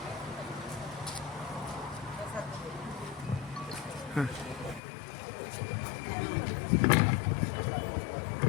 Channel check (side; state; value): right; drops out; at 4.8 s